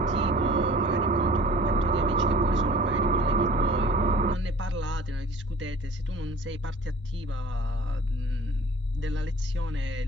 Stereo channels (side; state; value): both; normal; correlation 0.47